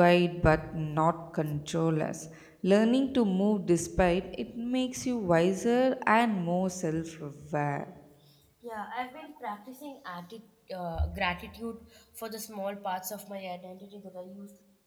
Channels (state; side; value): identical; both; correlation 1.00